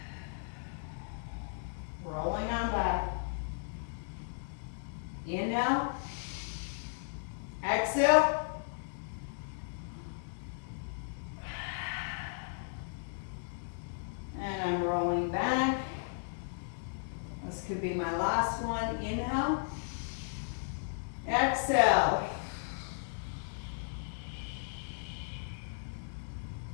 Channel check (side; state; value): right; silent; digital silence